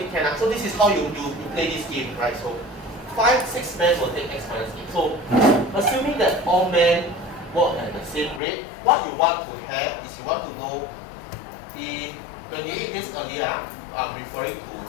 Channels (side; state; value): right; drops out; at 8.4 s